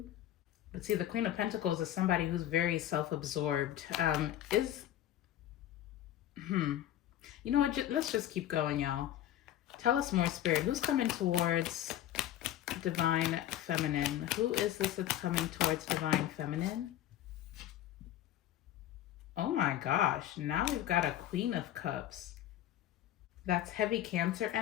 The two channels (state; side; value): quieter; right; 12.4 dB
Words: But see, the Queen of Pentacles is somebody who's very self-absorbed. You know what? Let's just keep going, y'all. Tell us more, Spirit. Who's coming towards Divine Feminine? Who is this that's coming towards Divine Feminine? Oh my gosh. Now we've got a Queen of Cups. That's heavy Cancer